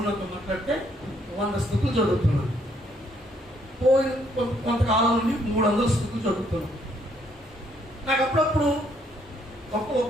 మాట్లాడితే 100 స్థుతులు చదువుతున్నాను. పోయిన కొంతకాలం నుండి 300 స్థుతులు చదువుతున్నాను. నాకు అప్పుడప్పుడు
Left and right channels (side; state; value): both; normal; correlation 0.69